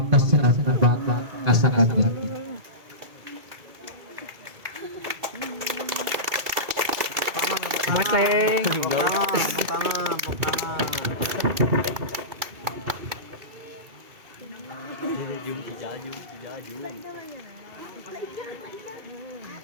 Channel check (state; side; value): late; left; 2.3 ms